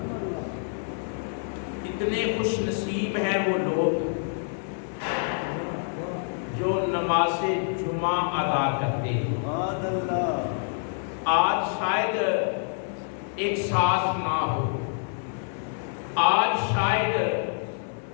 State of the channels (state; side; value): silent; right; 60 dB below the other